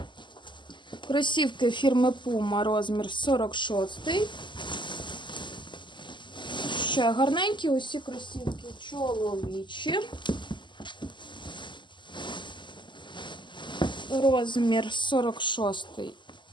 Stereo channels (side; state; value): right; late; 0.23 ms